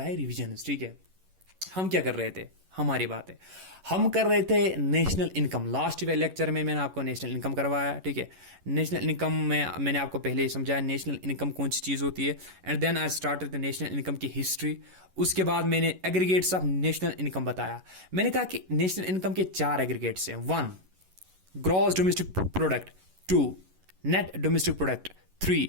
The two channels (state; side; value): late; left; 11 ms